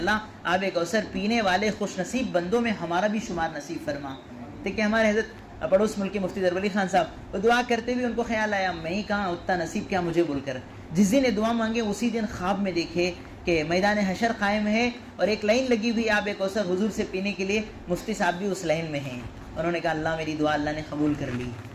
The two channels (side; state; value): both; identical; correlation 1.00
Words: آب کوثر پینے والے خوش نصیب بندوں میں ہمارا بھی شمار نصیب فرما. دیکھیں ہمارے حضرت پڑوس ملک کے مفتی ظفر علی خان صاحب وہ دعا کرتے بھی ان کو خیال آیا میں ہی کہاں اتنا نصیب کیا مجھے بول کر، جس دن یہ دعا مانگے اسی دن خواب میں دیکھے کہ میدان حشر قائم ہے اور ایک لائن لگی ہوئی آب کوثر حضور سے پینے کے لیے، مفتی صاحب بھی اس لائن میں ہیں. انہوں نے کہا اللہ میری دعا اللہ نے قبول کر لی.